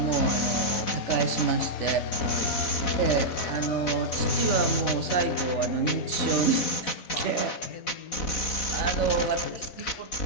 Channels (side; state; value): right; late; 4.0 ms